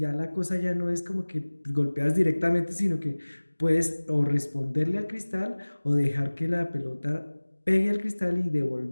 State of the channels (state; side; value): inverted; both; correlation -1.00